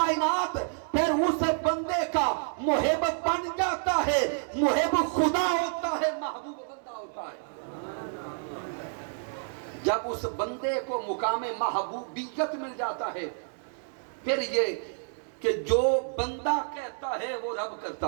پھر اس بندے کا محب بن جاتا ہے، محب خدا ہوتا ہے، محبوب بندہ ہوتا ہے۔ جب اس بندے کو مقام محبوبیت مل جاتا ہے، پھر یہ کہ جو بندہ کہتا ہے وہ رب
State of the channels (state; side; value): silent; left; digital silence